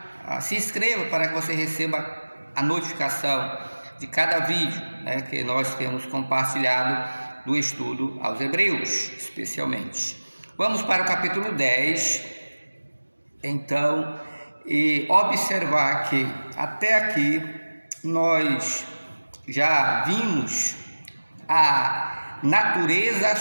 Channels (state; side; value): inverted; both; correlation -1.00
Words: se inscreva para que você receba a notificação de cada vídeo, que nós temos compartilhado do estudo aos Hebreus, especialmente. Vamos para o capítulo 10, então, e observar que até aqui nós já vimos a natureza